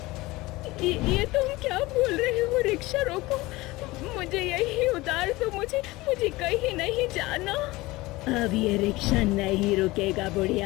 ये तुम क्या बोल रहे हो? रिक्शा रोको, मुझे यही उतार दो, मुझे मुझे कहीं नहीं जाना। अब ये रिक्शा नहीं रुकेगा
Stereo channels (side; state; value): right; quieter; 20.5 dB